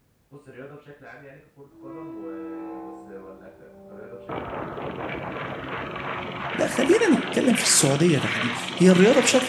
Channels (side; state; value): both; identical; correlation 1.00